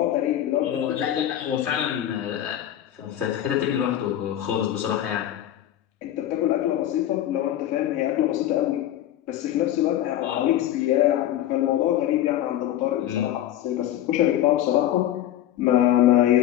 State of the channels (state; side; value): quieter; right; 12.3 dB